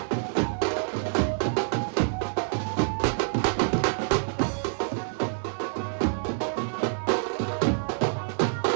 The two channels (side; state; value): left; silent; 60 dB below the other